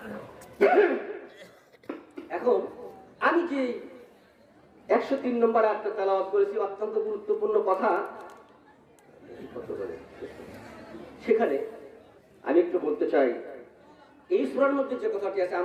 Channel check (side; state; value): both; identical; correlation 1.00